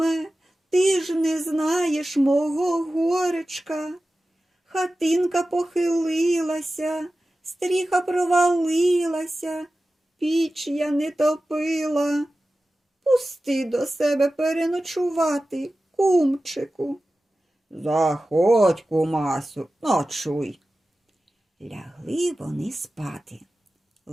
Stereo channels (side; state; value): both; normal; correlation 0.95